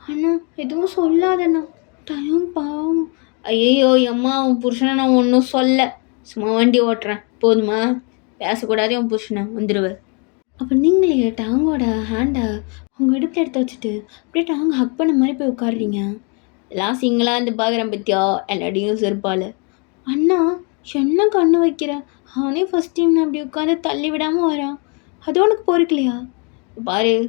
அண்ணா எதுவும் சொல்லாதண்ணா. டயம் பாவம். ஐயோ அம்மா உன் புருஷனை நான் ஒன்றும் சொல்ல, சும்மா வண்டி ஓட்டுறேன் போதுமா? பேசக்கூடாது உன் புருஷனை வந்துடுவேன். அப்போ நீங்களே டாங்கோட ஹேண்டை உங்கள் இடுப்பில் எடுத்து வச்சுட்டு அப்படியே டாங்க ஹக் பண்ண மாதிரி போய் உட்காடுறீங்க. எல்லாம் சிங்கிளாக இருந்து பார்க்குறேன் பத்தியா எல்லாத்தையும் செருப்பால். அண்ணா என்ன கண்ணு வைக்கிற? அவனே ஃபஸ்ட் டைம் நான் அப்படி உட்காந்து தள்ளி விடாமல் வரான். அது உனக்கு பொறுக்கலையா? பாரு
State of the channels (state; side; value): quieter; right; 35.0 dB